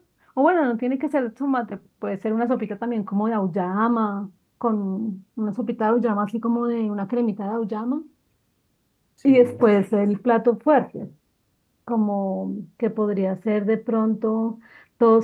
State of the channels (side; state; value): both; identical; correlation 1.00